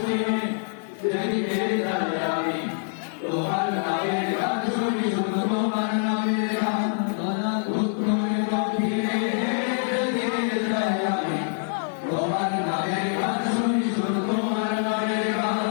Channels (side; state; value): right; silent; digital silence